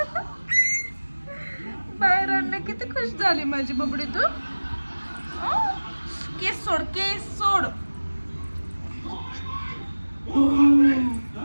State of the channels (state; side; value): inverted; both; correlation -1.00